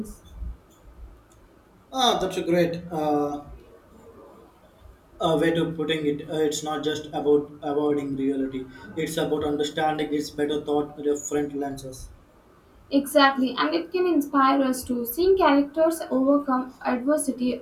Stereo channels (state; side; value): identical; both; correlation 1.00